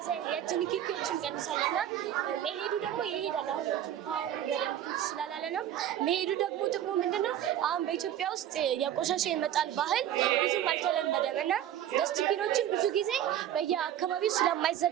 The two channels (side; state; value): left; quieter; 11.1 dB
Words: የእጅ ንክኪዎችን ይቀንሳልና መሄዱ ደግሞ ይሄዳል። አሁን ፓወር በደንብ ስላላለ ነው መሄዱ። ደግሞ ጥቅሙ ምንድነው? አሁን በኢትዮጵያ ውስጥ የቆሻሻ የመጣል ባህል ብዙም አልተለመደም እና ስቲከሮችን ብዙ ጊዜ በየአካባቢው